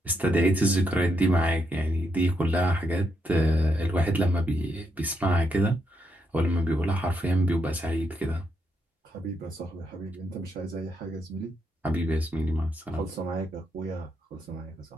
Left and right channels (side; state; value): both; normal; correlation 0.80